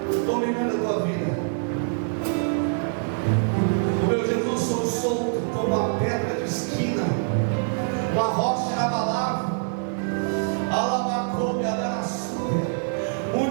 dominando a tua vida? O meu Jesus sou solto como uma pedra de esquina, uma rocha inabalável. Alabacoube, adarassuia.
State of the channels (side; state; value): left; silent; 62 dB below the other